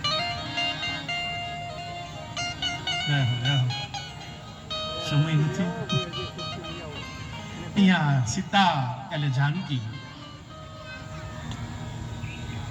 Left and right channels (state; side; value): identical; both; correlation 1.00